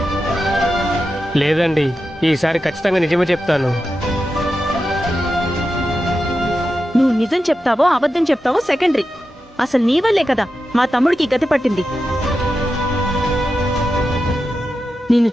లేదండి, ఈసారి ఖచ్చితంగా నిజమే చెప్తాను. నువ్వు నిజం చెప్తావో అబద్ధం చెప్తావో సెకండరీ. అసలు నీ వల్లే కదా మా తమ్ముడికి గతి పట్టింది. నిన్ను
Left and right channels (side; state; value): both; normal; correlation 0.90